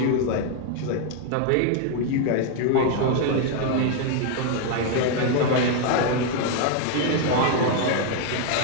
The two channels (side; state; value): both; different; correlation 0.00